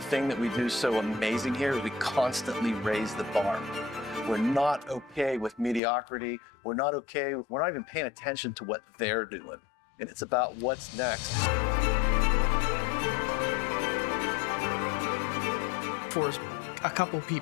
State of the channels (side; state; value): right; drops out; at 5.8 s